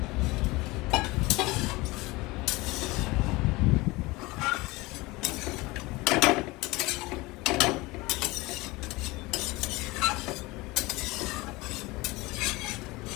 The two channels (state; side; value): quieter; right; 22.3 dB